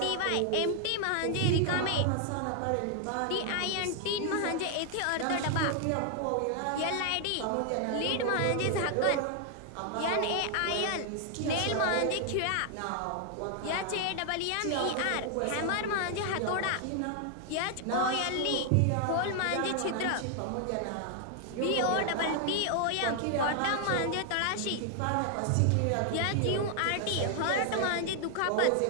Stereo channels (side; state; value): both; different; correlation 0.00